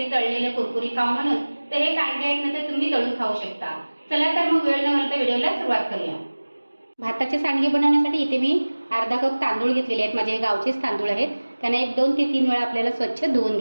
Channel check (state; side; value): inverted; both; correlation -1.00